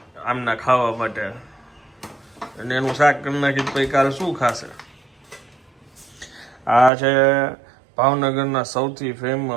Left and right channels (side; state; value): left; drops out; at 6.9 s